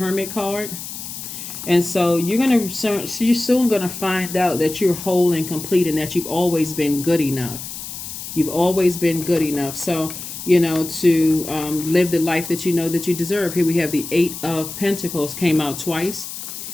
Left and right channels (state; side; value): noise; left; hiss, 9 dB below the sound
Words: card. And so you're soon going to find out that you're whole and complete, and that you've always been good enough. You've always been good enough. So, to live the life that you know that you deserve. Here we have the 8 of Pentacles came out twice.